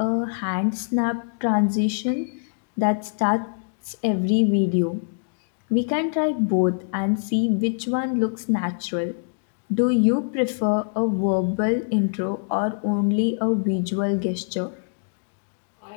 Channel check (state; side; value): silent; right; digital silence